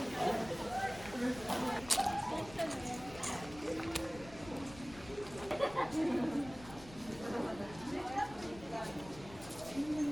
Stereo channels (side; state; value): left; noise; rumble, 17 dB below the sound